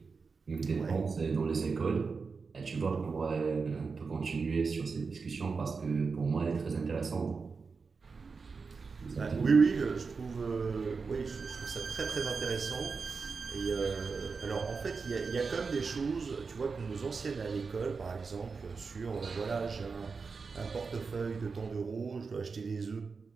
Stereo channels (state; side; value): quieter; left; 4.8 dB